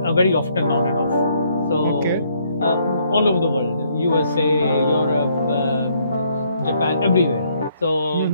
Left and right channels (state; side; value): inverted; both; correlation -0.69